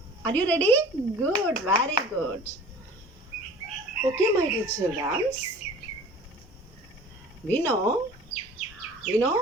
Are you ready? Good. Very good. Okay, my dear children. We know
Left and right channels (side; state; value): both; normal; correlation 0.44